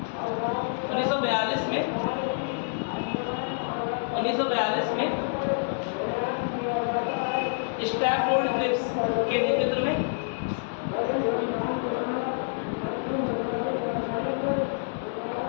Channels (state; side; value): silent; right; digital silence